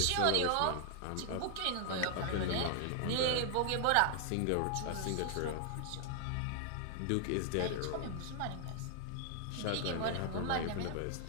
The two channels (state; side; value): different; both; correlation 0.00